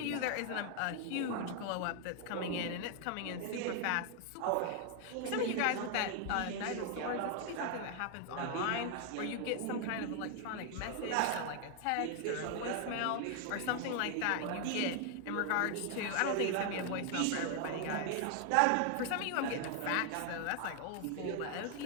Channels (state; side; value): different; both; correlation 0.00